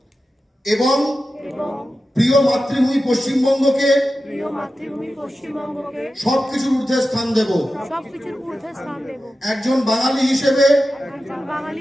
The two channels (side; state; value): both; normal; correlation 0.92